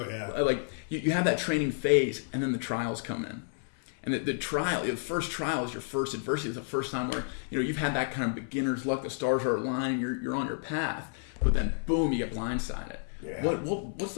yeah. Like you have that training phase, and then the trials come in. And the first trial is your first adversity. It's the first time where you've had that kind of beginner's luck. The stars are aligning. You're on your path, but then boom, you get blindsided. Yeah. What's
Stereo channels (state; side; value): silent; right; 57 dB below the other